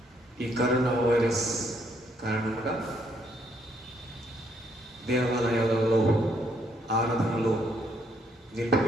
ఈ కరోనా వైరస్ కారణంగా దేవాలయాలలో ఆరాధనలో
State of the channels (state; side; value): normal; both; correlation 0.71